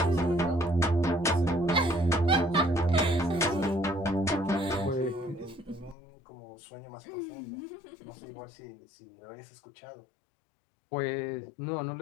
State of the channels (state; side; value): drops out; right; at 6.0 s